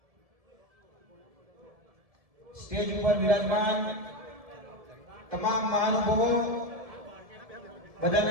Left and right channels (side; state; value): left; late; 1.7 ms